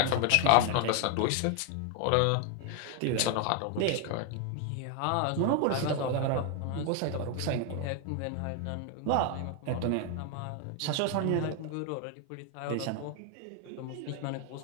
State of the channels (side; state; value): both; different; correlation 0.01